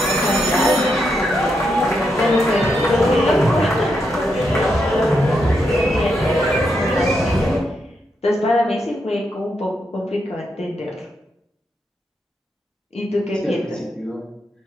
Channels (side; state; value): both; normal; correlation 0.82